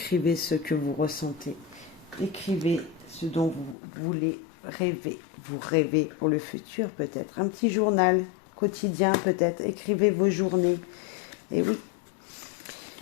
ce que vous ressentez. Écrivez ce dont vous voulez rêver. Vous rêvez pour le futur peut-être. Un petit journal quotidien peut-être. Écrivez vos journées. Et oui.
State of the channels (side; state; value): right; drops out; at 3.8 s